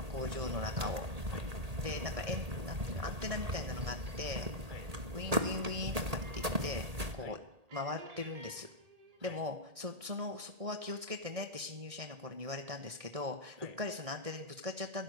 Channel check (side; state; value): left; late; 1.8 ms